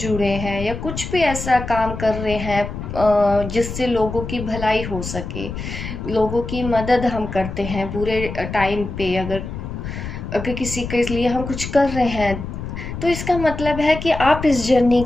हैं या कुछ भी ऐसा काम कर रहे हैं जिससे लोगों की भलाई हो सके, लोगों की मदद हम करते हैं पूरे टाइम पे। अगर अगर किसी के लिए हम कुछ कर रहे हैं, तो इसका मतलब है कि आप इस जर्नी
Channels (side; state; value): left; noise; rumble, 7 dB below the sound